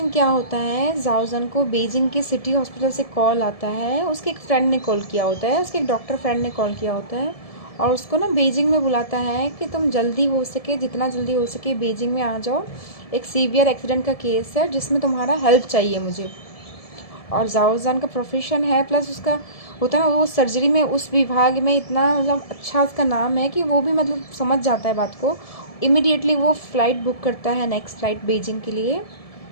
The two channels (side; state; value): right; late; 1.7 ms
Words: क्या होता है, जाओजन को बीजिंग के सिटी हॉस्पिटल से कॉल आता है। उसके एक फ्रेंड ने कॉल किया होता है, उसके एक डॉक्टर फ्रेंड ने कॉल किया होता है, और उसको ना बीजिंग में बुलाता है कि तुम जल्दी हो सके, जितना जल्दी हो सके बीजिंग में आ जाओ। एक सीवियर एक्सीडेंट का केस है जिसमें तुम्हारा हेल्प चाहिए मुझे। और जाओजान का प्रोफेशन है, प्लस उसका होता है ना, वो सर्जरी में उस विभाग में इतना मतलब अच्छा उसका नाम है कि वो भी मतलब समझ जाता है बात को। इमिडिएटली वो फ़्लाइट बुक करता है, नेक्स्ट फ़्लाइट बीजिंग के लिए।